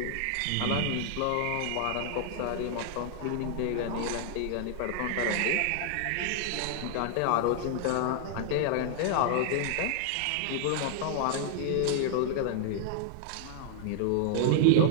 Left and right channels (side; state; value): both; different; correlation -0.01